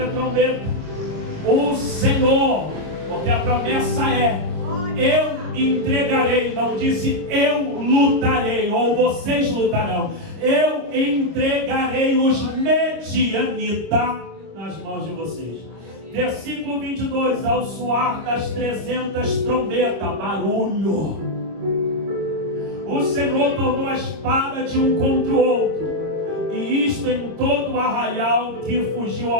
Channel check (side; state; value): left; late; 25 ms